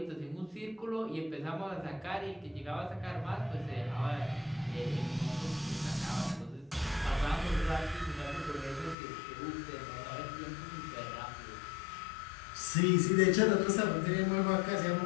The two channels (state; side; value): drops out; right; at 9.0 s